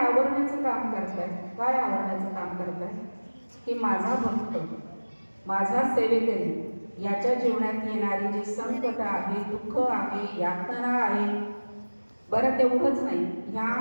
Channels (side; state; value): both; inverted; correlation -1.00